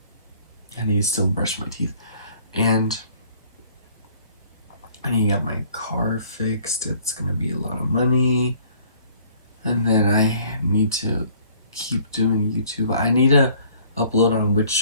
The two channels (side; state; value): both; inverted; correlation -0.57